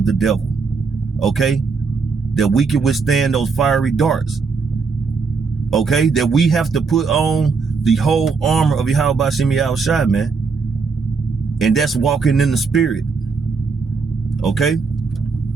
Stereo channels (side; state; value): left; quieter; 4.9 dB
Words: the devil, okay? That we can withstand those fiery darts, okay? That we have to put on the whole armor of Yahweh Shem Yahweh Shai, man. And that's walking in the spirit, okay?